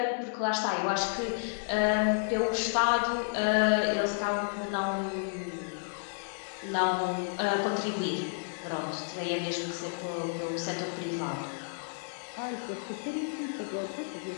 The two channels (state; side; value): silent; right; digital silence